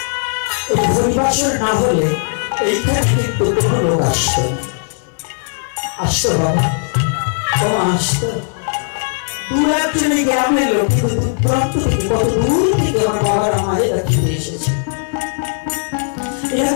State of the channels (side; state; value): right; silent; 68 dB below the other